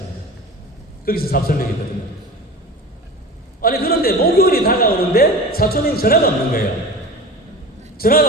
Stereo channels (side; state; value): both; normal; correlation 0.33